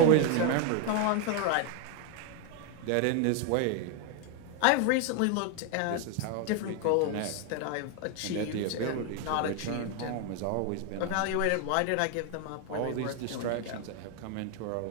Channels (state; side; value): different; both; correlation 0.01